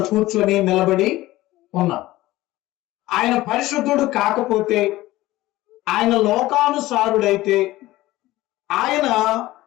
కూర్చొని నిలబడి ఉన్నాం. ఆయన పరిశుద్ధుడు కాకపోతే, ఆయన లోకానుసారుడైతే, ఆయన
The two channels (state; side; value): quieter; right; 17.3 dB